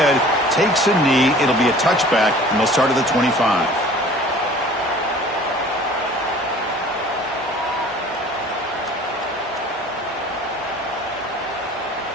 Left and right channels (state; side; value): normal; both; correlation 0.47